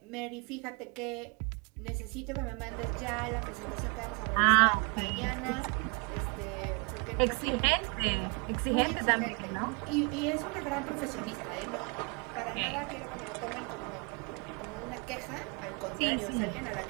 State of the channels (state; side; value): quieter; left; 32.5 dB